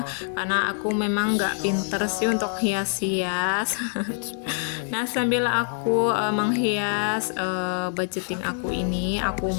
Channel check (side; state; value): right; silent; 58 dB below the other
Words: karena aku memang nggak pinter sih untuk hias-hias. Nah sambil aku menghias budgeting aku ini, aku